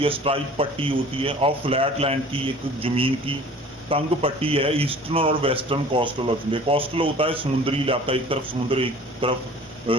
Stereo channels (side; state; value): both; normal; correlation 0.47